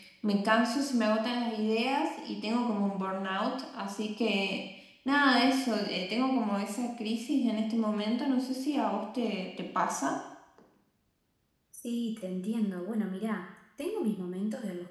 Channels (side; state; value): both; identical; correlation 1.00